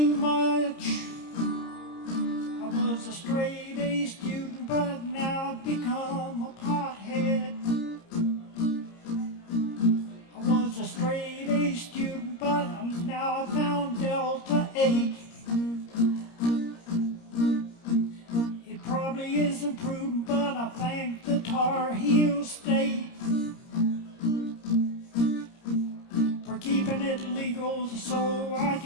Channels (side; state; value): right; late; 30 ms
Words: much. I was a straight A student, but now I've become a pothead. I was a straight A student, but now I found Delta 8. It probably isn't prudent, but I thank the Tar Heel State for keeping it legal so I